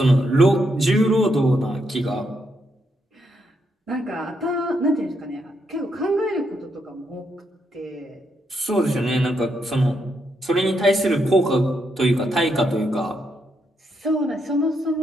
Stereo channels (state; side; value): normal; both; correlation 0.79